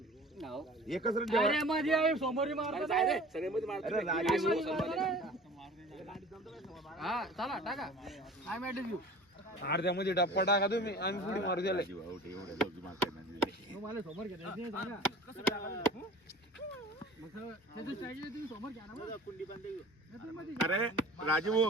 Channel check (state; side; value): normal; both; correlation 0.43